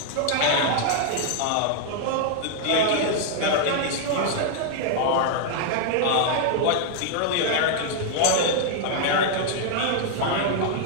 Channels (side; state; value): both; different; correlation 0.00